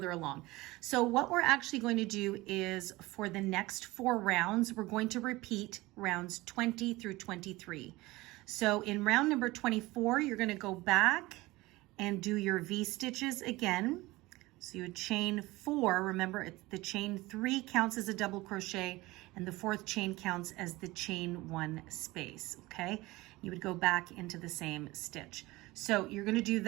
along. So what we're actually going to do is for the next 4 rounds, we're going to repeat rounds 20 through 23. So in round number 24, you're going to go back and do your V stitches again. So you would chain 4. Remember, the chain 3 counts as a double crochet, and the 4th chain counts as the chain 1 space, okay? You would go back into the same stitch. So you're going to do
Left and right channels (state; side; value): quieter; left; 20.3 dB